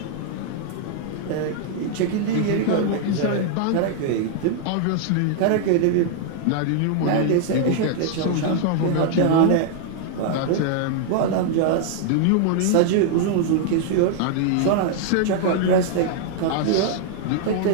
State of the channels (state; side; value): different; both; correlation -0.01